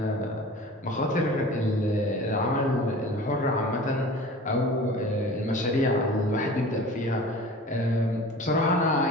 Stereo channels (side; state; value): both; normal; correlation 0.40